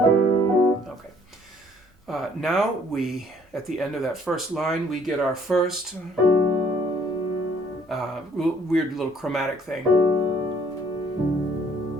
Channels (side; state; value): both; normal; correlation 0.61